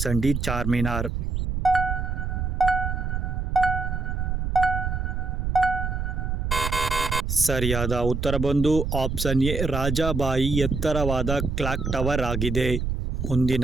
D Charminar. ಸರಿಯಾದ ಉತ್ತರ ಬಂದು ಆಪ್ಷನ್ ಎ ರಾಜಾಬಾಯಿ ಎತ್ತರವಾದ ಕ್ಲಾಕ್ ಟವರ್ ಆಗಿದೆ.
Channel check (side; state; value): right; noise; rumble, 2 dB below the sound